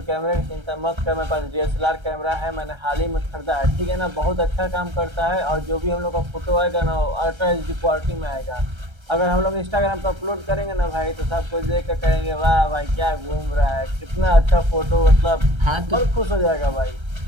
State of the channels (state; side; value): late; left; 1.3 ms